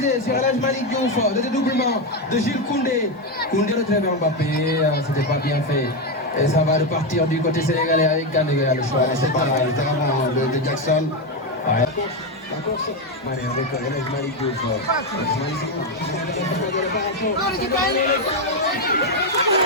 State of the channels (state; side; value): normal; both; correlation 0.08